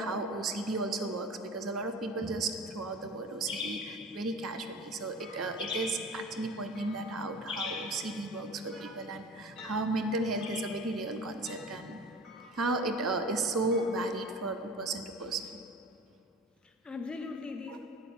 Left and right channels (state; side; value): normal; both; correlation 0.37